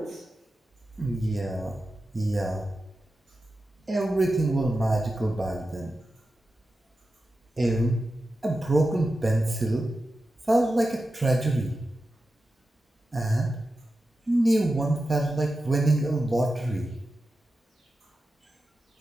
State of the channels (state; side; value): normal; both; correlation 0.92